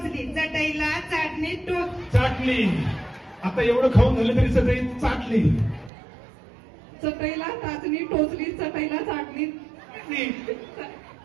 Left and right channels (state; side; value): drops out; left; at 5.9 s